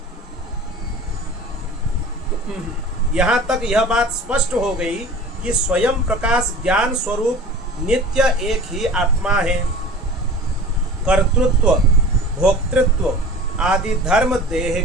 यहाँ तक यह बात स्पष्ट हो गई कि स्वयं प्रकाश ज्ञान स्वरूप नित्य एक ही आत्मा है। कर्तृत्व, भोक्तृत्व आदि धर्म देह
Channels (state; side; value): normal; both; correlation 0.40